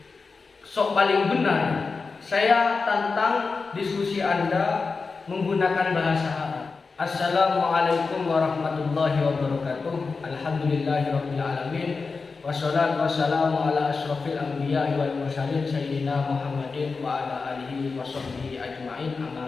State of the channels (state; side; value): quieter; right; 4.5 dB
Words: sok paling benar, saya tantang diskusi Anda menggunakan bahasa Arab. Assalamualaikum warahmatullahi wabarakatuh. Alhamdulillahirabbil alamin. Wassalatu wassalamu ala asyrofil anbiya'i wal mursalin sayyidina Muhammadin wa ala alihi washabbihi ajmain, amma